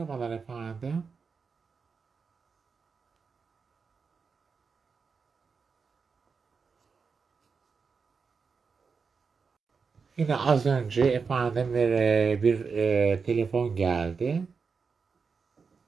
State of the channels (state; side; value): quieter; left; 5.3 dB